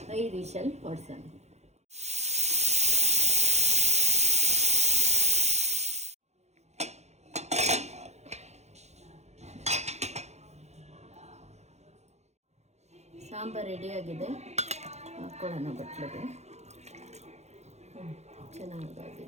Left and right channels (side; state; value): left; late; 0.32 ms